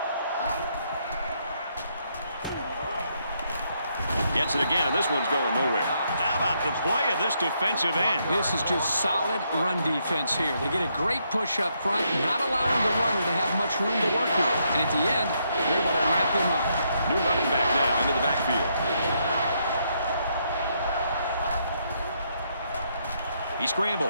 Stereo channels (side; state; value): both; inverted; correlation -0.76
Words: Gets it again, and this one's going nowhere. How about the play of this defensive end? This is just solid run defense here. They get a great push up front, not allowing the runner to have much room to work with. And at the end, they're able to wrap him up. New running back now into the backfield. He